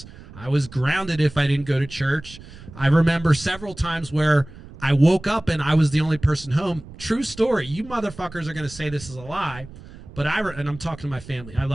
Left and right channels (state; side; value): noise; right; rumble, 18 dB below the sound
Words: I was grounded if I didn't go to church. I remember several times where I woke up and I was the only person home. True story. You motherfuckers are going to say this is a lie, But and I'm talking to my family. I